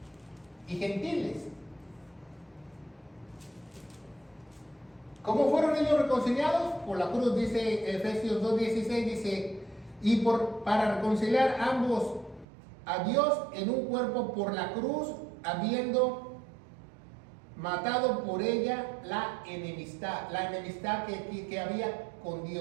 y gentiles. ¿Cómo fueron ellos reconciliados? Por la cruz, dice Efesios 2:16, dice, y para reconciliar ambos a Dios en un cuerpo por la cruz, habiendo matado por ella la enemistad que había con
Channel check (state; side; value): drops out; left; at 12.5 s